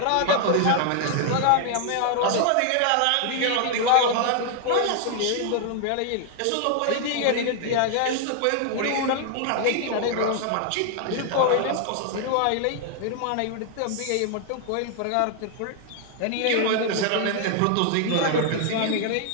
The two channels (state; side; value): different; both; correlation 0.00